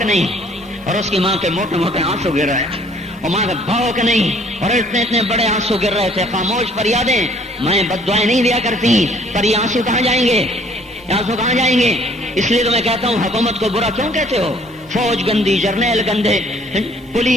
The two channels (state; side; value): normal; both; correlation 0.59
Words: نہیں، اور اس کی ماں کے موٹے موٹے آنسو گر رہے ہیں، اور ماں کا بھوک نہیں، اور اتنے بڑے آنسو گر رہے تھے۔ خاموش فریادیں، میں بد دعائیں نہیں دیا کرتی، پر یہ آنسو کہاں جائیں گے، اس لیے تو میں کہتا ہوں حکومت کو برا کیوں کہتے ہو، فوج گندی، جرنیل گندے،